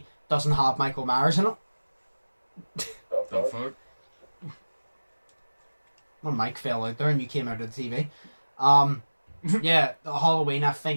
Doesn't have Michael Myers in it. The fuck? When Mike fell out there and you came out of the TV. Yeah, the Halloween, I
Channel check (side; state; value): both; inverted; correlation -1.00